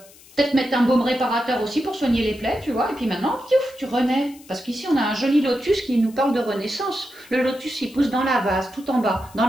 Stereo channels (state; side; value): noise; left; hiss, 23 dB below the sound